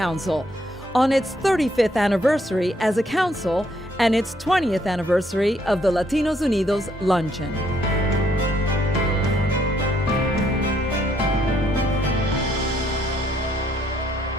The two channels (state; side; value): normal; both; correlation 0.70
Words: on its 35th anniversary as a council and its 20th anniversary of the Latinos Unidos Luncheon.